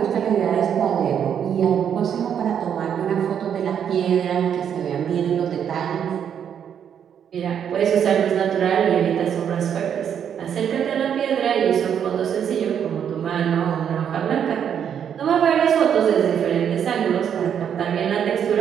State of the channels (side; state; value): left; quieter; 8.5 dB